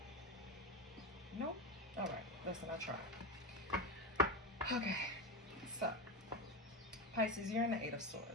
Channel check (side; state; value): both; normal; correlation 0.18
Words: Nope. All right. Listen, I tried. Okay. So, Pisces, you're in the Eight of